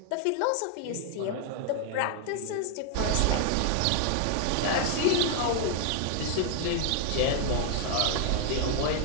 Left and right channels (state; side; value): different; both; correlation 0.00